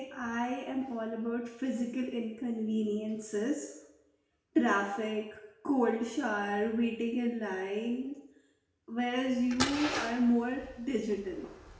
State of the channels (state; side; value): identical; both; correlation 1.00